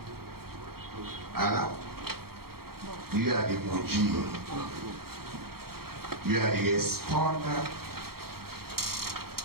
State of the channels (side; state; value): left; late; 0.94 ms